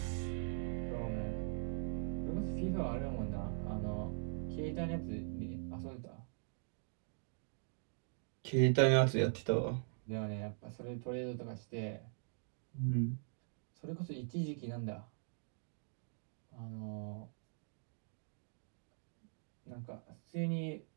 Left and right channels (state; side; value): silent; left; digital silence